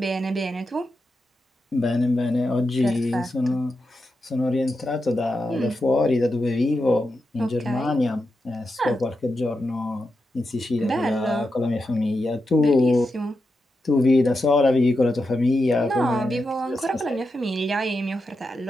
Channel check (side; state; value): both; normal; correlation 0.88